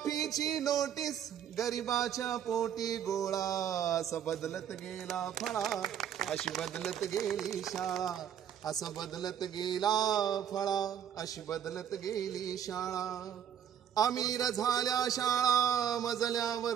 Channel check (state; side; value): quieter; left; 9.3 dB